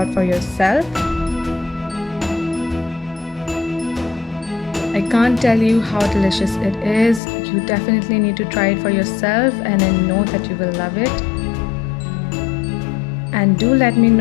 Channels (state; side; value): drops out; right; at 7.2 s